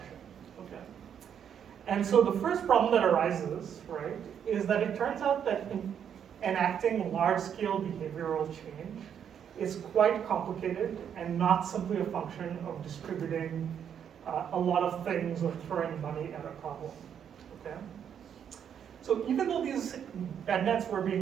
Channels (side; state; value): left; quieter; 8.5 dB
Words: Okay. And so the first problem that arises, right, is that it turns out that enacting large-scale behavioral change is quite complicated and not simply a function of distributing a lot of things or throwing money at a problem, okay? So even though these bed nets were